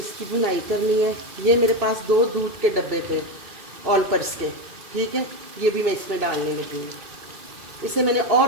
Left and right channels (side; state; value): left; late; 2.7 ms